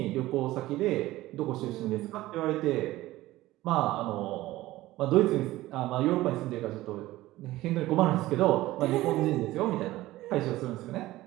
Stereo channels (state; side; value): quieter; left; 16.9 dB